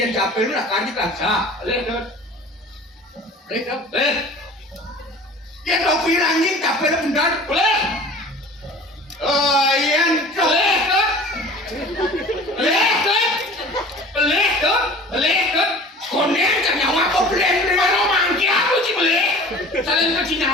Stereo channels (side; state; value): both; normal; correlation 0.43